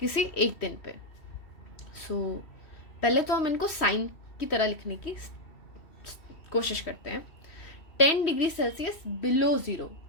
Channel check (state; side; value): late; right; 3.1 ms